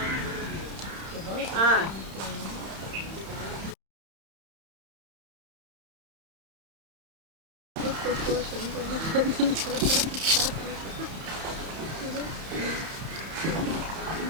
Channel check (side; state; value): left; late; 31 ms